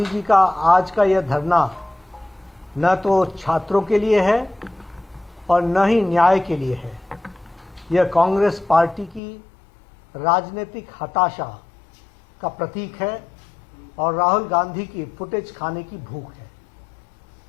जी का आज का यह धरना न तो छात्रों के लिए है और न ही न्याय के लिए है। यह कांग्रेस पार्टी की राजनीतिक हताशा का प्रतीक है और राहुल गांधी की फुटेज खाने की भूख है।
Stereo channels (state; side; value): drops out; right; at 9.2 s